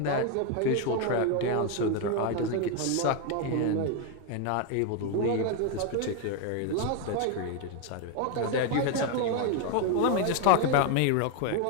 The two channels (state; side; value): different; both; correlation 0.01